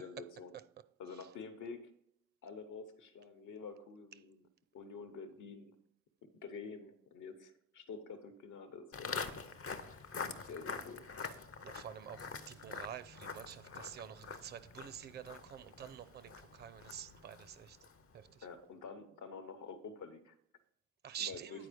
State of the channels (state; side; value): normal; both; correlation 0.01